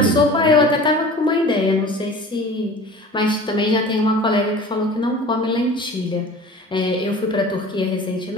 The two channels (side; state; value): both; normal; correlation 0.41